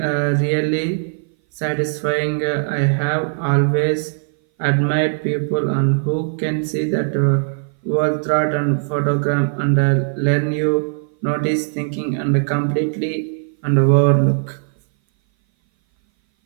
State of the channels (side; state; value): left; silent; 59 dB below the other